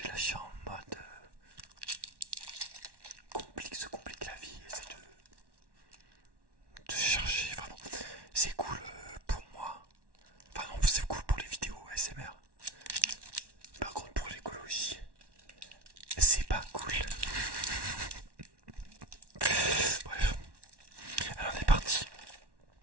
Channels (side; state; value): left; late; 1.1 ms